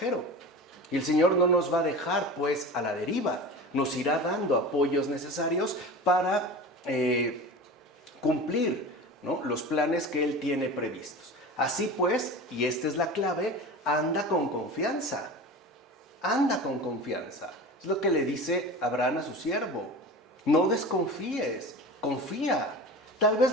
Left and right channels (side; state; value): both; normal; correlation 0.33